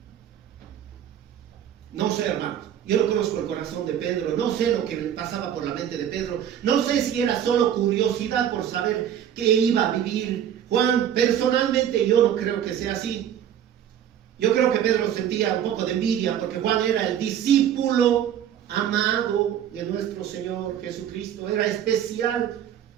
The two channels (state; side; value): quieter; left; 9.9 dB